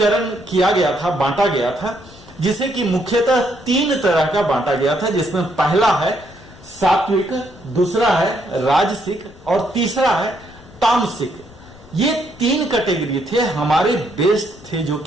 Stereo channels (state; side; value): noise; left; rumble, 23 dB below the sound